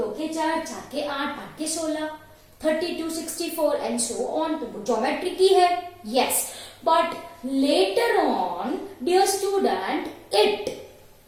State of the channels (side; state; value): both; identical; correlation 1.00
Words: के चार, चार के आठ, आठ के 16, 32, 64 and so on. तो ज्योमेट्री की है. Yes, but later on, dear student, it